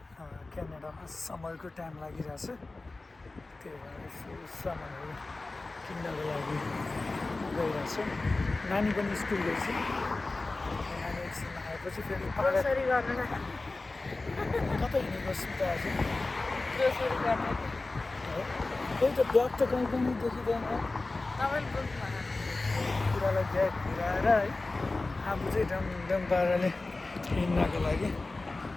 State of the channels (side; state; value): right; quieter; 3.3 dB